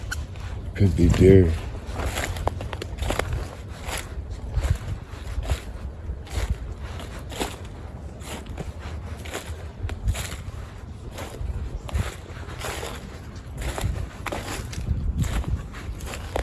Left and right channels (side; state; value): both; identical; correlation 1.00